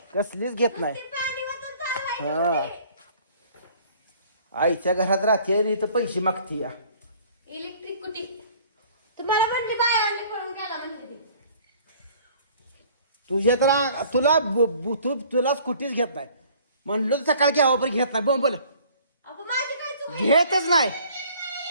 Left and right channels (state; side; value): inverted; both; correlation -0.54